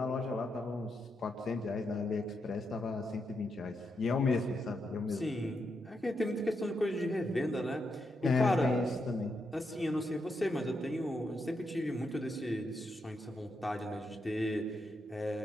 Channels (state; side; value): normal; both; correlation 0.83